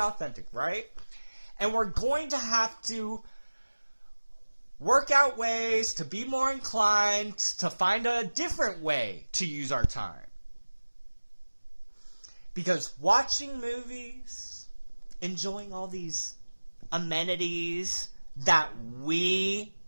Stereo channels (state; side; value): inverted; both; correlation -1.00